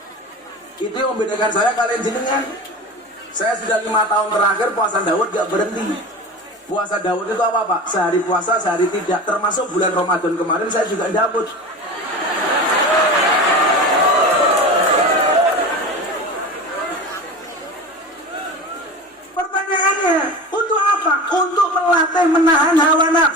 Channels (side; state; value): both; normal; correlation 0.31